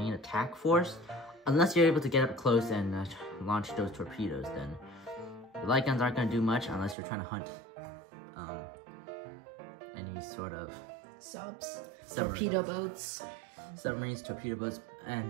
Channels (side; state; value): left; drops out; at 7.0 s